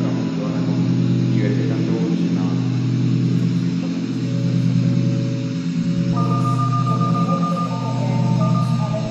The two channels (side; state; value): both; identical; correlation 1.00